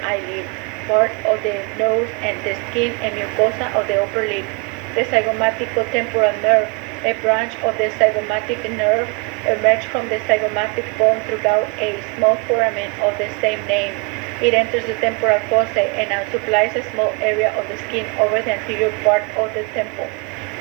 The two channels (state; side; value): quieter; left; 31.2 dB